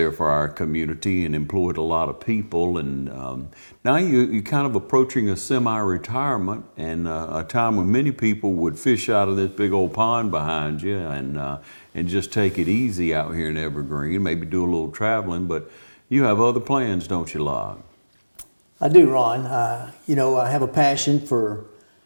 for our community and employed a lot of people. And now you're kind of approaching a semi-retirement and a time when many people would fish out of this big old pond behind you and just take it easy out here in Evergreen, maybe do a little traveling. But you have other plans, don't you, Locke? I do, Ron. I have a passion for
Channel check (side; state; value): both; inverted; correlation -1.00